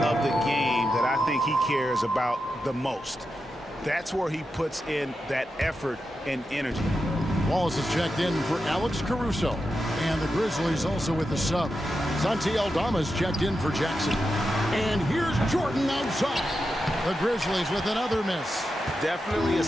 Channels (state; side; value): normal; both; correlation 0.89